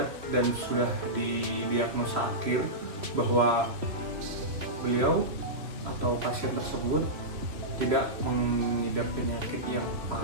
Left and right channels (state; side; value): late; left; 3.2 ms